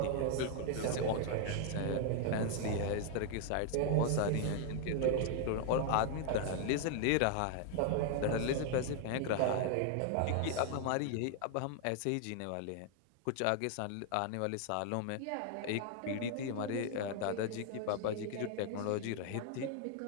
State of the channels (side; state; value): both; different; correlation 0.00